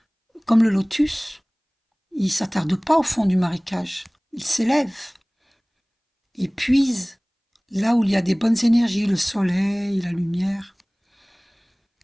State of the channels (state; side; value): identical; both; correlation 1.00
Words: comme le lotus, il ne s'attarde pas au fond du marécage, il s'élève, il puise là où il y a des bonnes énergies, le soleil, la lumière.